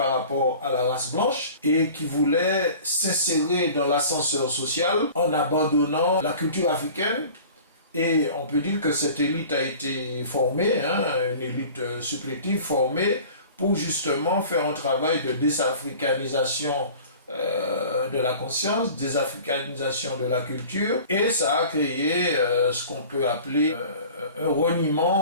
rapport à la race blanche et qui voulait s'insérer dans l'ascenseur social en abandonnant la culture africaine. Et on peut dire que cette élite a été formée, une élite supplétive formée pour justement faire un travail de désafricanisation de la conscience, désafricanisation de la culture, et ça a créé ce qu'on peut appeler un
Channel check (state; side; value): inverted; both; correlation -0.43